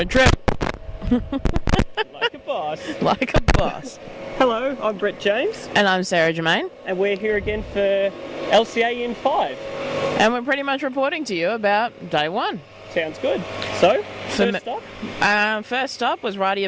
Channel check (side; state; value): both; identical; correlation 1.00